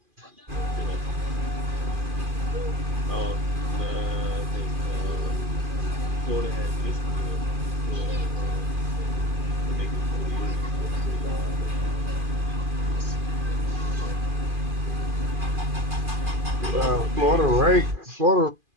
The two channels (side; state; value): left; late; 2.5 ms